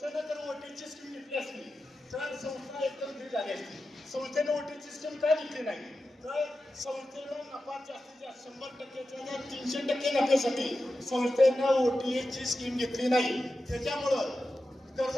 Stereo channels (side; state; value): both; normal; correlation 0.92